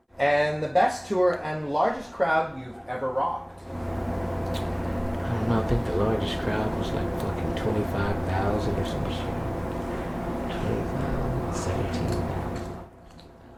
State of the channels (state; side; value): identical; both; correlation 1.00